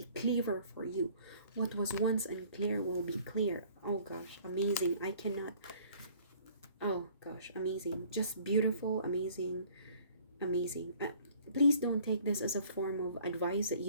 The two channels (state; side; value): inverted; both; correlation -0.55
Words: clearer for you. What was once unclear will be clear. Oh gosh, amazing. I cannot. Oh gosh, amazing. Just beautiful, amazing, amazing. Please don't take this as a form of advice that